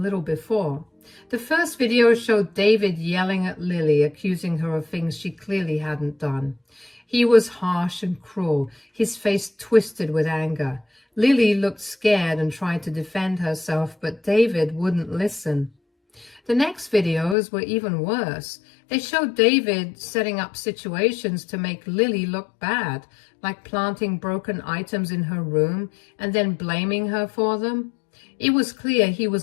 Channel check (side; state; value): right; drops out; at 17.4 s